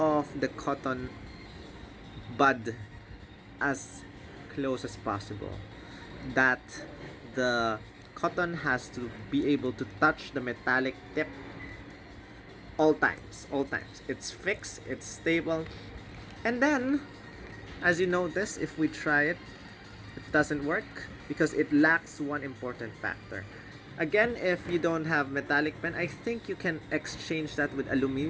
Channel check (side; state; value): both; identical; correlation 1.00